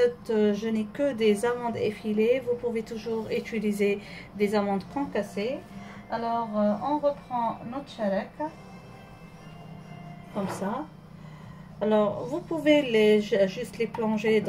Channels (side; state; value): both; identical; correlation 1.00